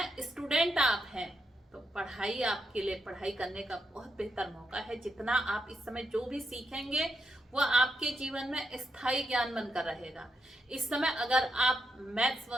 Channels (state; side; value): normal; both; correlation 0.82